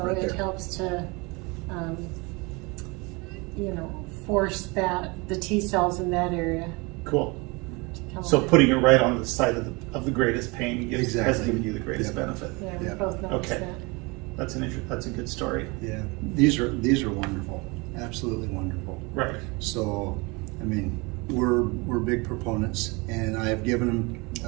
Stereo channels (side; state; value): left; quieter; 27.1 dB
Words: it there. helps to, you know, force the T cells in that area cool. to come So alive. putting it right on the side of the greatest pain has Exactly. given you the greatest Yep. benefit. Yeah, we Yeah. both noticed Okay. that. That's that's a good story. Yeah, these are wonderful, absolutely wonderful. Right. So, I mean, we're big proponents, and I have given them.